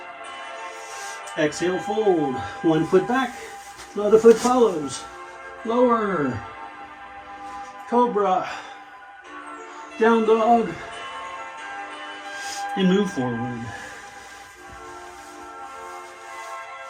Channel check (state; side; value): identical; both; correlation 1.00